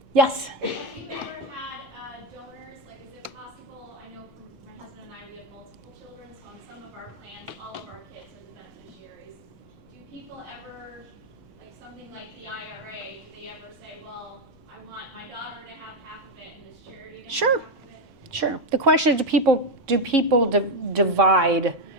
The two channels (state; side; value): noise; left; rumble, 26 dB below the sound